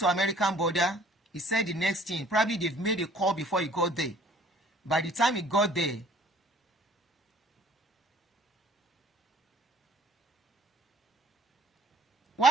American border, he said the next thing, probably they've made a call before he got there. By the time he got there,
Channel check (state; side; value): normal; both; correlation 0.55